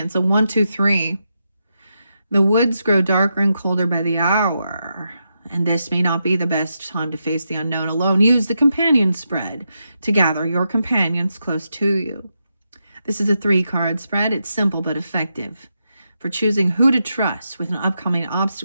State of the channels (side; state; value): both; inverted; correlation -0.85